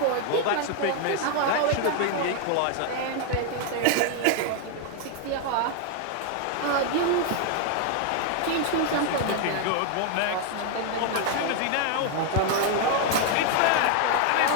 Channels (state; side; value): different; both; correlation 0.00